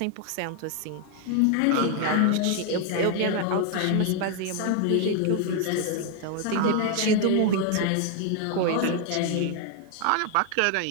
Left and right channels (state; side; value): different; both; correlation 0.01